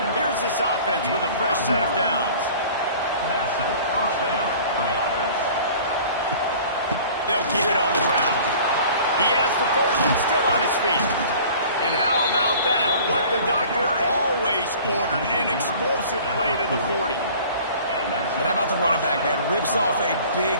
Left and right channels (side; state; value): both; inverted; correlation -0.46